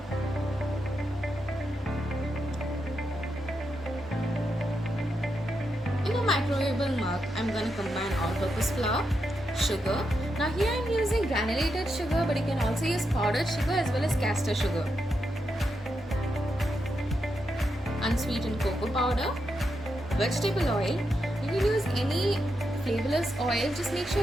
In a microwavable mug, I'm going to combine all-purpose flour, sugar. Now here I'm using granulated sugar, but you can also use powdered sugar as well as castor sugar. Unsweetened cocoa powder, vegetable oil. You can use any flavorless oil, just make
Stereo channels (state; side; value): normal; both; correlation 0.84